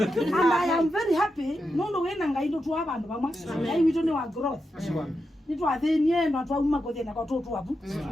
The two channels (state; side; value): normal; both; correlation 0.87